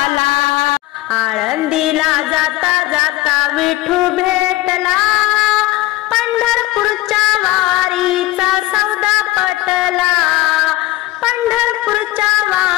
आळंदीला जाता जाता विठू भेटला, पंढरपूरच्या वारीचा सौदा पटला, पंढरपूरच्या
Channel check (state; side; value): quieter; right; 17.3 dB